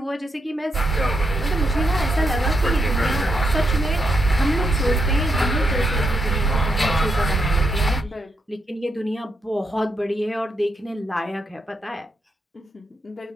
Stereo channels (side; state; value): both; normal; correlation 0.81